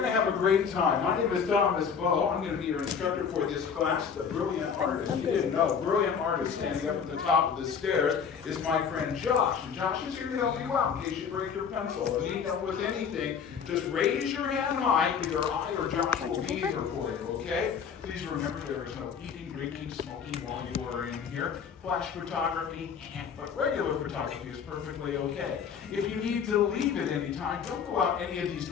to have a great time. My name is Thomas Bowe. I'm going to be your instructor for this class. The brilliant artist, you didn't know, brilliant artist standing up at the top of the stairs is my friend Josh. And Josh is here to help you out in case you break your pencil or need help with anything. Just raise your hand high. Either I or Josh will be here for you, okay? Please remember there is no eating, drinking, smoking while you are in here. Flash photography, but regular photography is perfectly okay. If you need to leave at any time, don't go out any of these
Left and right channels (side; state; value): right; quieter; 6.8 dB